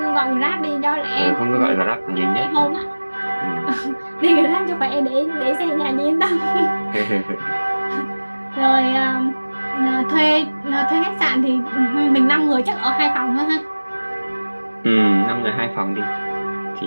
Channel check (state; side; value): inverted; both; correlation -1.00